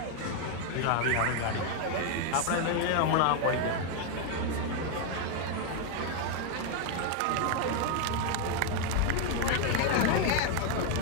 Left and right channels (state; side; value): different; both; correlation 0.01